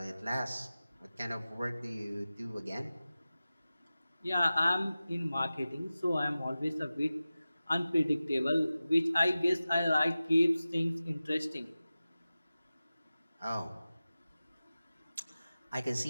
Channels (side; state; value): both; inverted; correlation -0.96